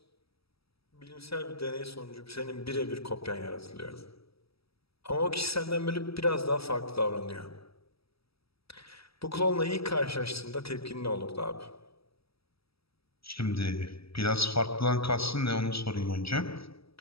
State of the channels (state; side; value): late; right; 0.76 ms